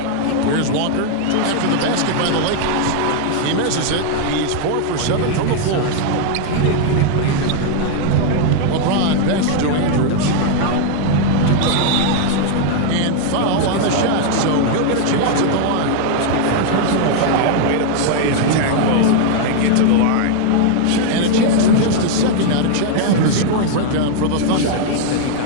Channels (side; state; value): both; different; correlation 0.00